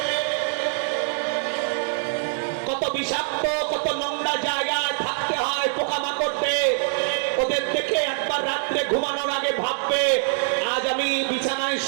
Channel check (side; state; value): left; silent; digital silence